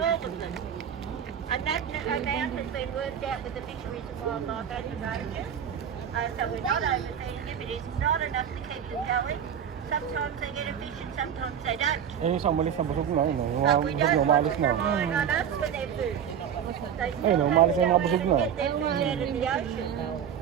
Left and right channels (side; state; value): left; quieter; 8.5 dB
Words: of them. And that amount has been worked out with the Fisheries and Wildlife and the rangers. So we're not overfeeding them. It is not enough to keep them going. Sometimes they get a fish and sometimes they don't. Ayun yung umalis na busog na. Yung But we busog don't na want umalis them na. relying on us for their food. They Ayun o, umalis na yung mga busog na. get their food out of the ocean.